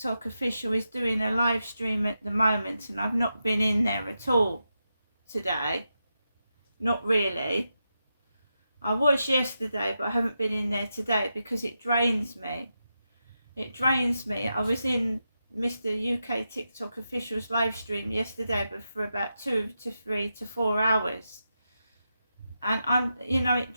Official is doing a live stream at the moment and I've not been in there at all today. Not really. I was yesterday, but I haven't been in there today because it drains me. It drains me. I was in Mr. UK TikTok Official's live stream yesterday, but for about 2 to 3 to 4 hours. And it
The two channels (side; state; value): both; inverted; correlation -0.88